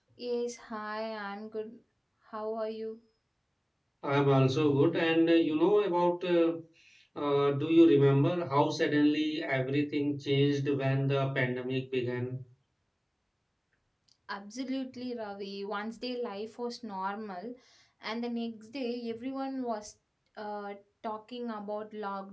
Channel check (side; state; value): both; identical; correlation 1.00